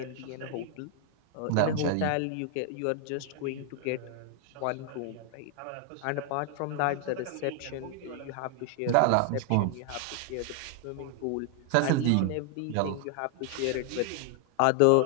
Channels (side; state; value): both; different; correlation 0.00